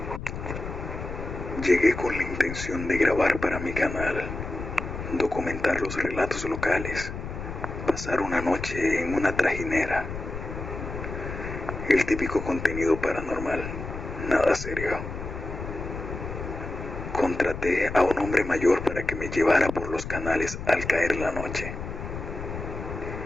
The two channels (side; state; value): left; noise; rumble, 7 dB below the sound